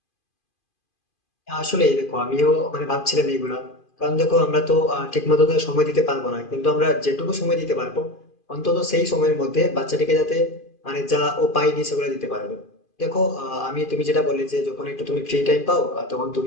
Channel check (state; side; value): late; right; 2.5 ms